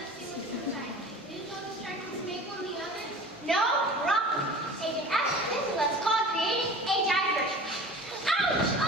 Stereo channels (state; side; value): normal; both; correlation 0.40